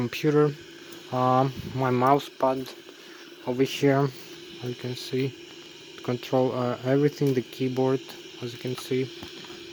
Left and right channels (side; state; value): both; identical; correlation 1.00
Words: my mouse pad over here, as you can see, to control everything, the keyboard, as you can see